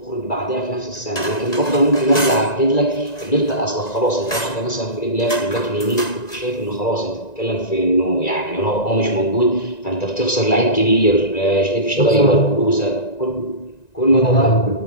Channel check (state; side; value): late; right; 1.9 ms